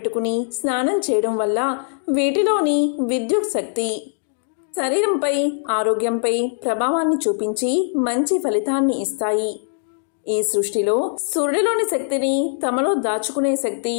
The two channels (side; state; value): right; silent; digital silence